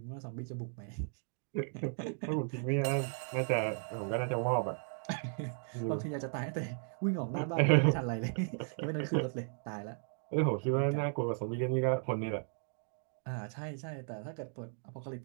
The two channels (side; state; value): left; silent; 54 dB below the other